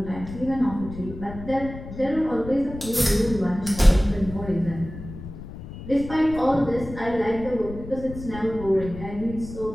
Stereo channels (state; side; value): noise; left; rumble, 12 dB below the sound